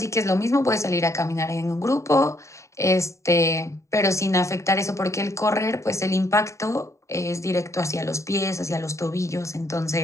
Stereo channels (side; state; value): right; late; 0.14 ms